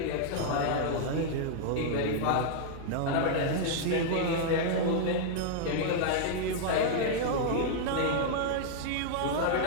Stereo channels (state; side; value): different; both; correlation -0.01